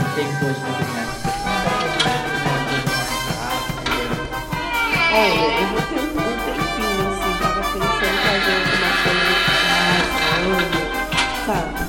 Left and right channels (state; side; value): identical; both; correlation 1.00